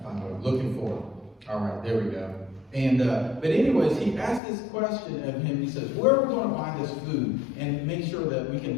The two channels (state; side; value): drops out; right; at 4.4 s